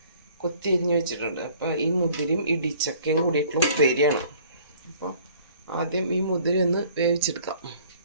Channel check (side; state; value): both; inverted; correlation -0.55